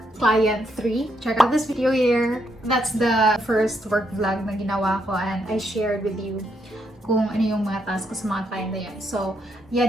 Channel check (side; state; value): both; normal; correlation 0.77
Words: Client 3, check out this video here. That's the first work vlog na ginawa ko and I shared with you kung ano yung mga tasks ko sa mga client na yun. So,